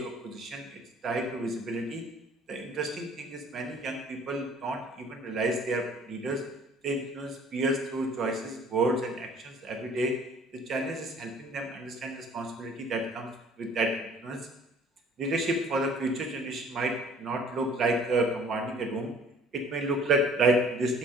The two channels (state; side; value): normal; both; correlation 0.53